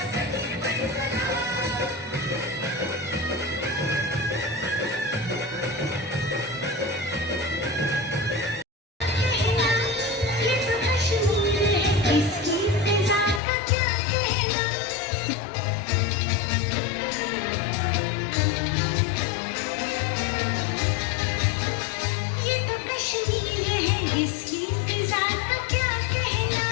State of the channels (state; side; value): drops out; right; at 13.4 s